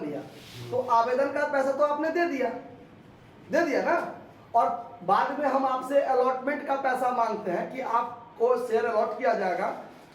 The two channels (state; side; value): identical; both; correlation 1.00